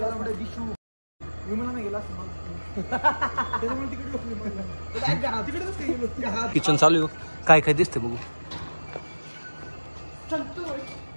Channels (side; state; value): both; inverted; correlation -1.00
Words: दिशू विमानाने गेला किचन चालू आहे काय काय दिसते बघू